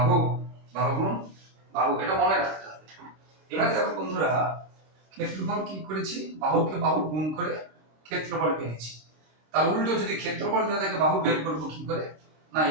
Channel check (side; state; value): left; late; 26 ms